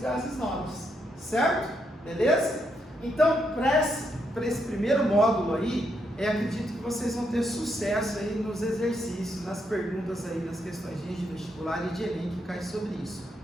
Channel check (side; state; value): both; normal; correlation 0.78